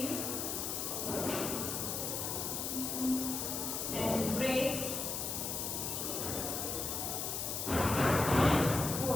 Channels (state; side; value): noise; left; hiss, 2 dB below the sound